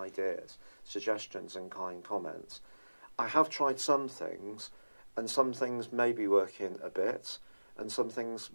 suggestions and kind comments. I have tried some things, and some things may be working a bit, and some things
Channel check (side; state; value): both; inverted; correlation -1.00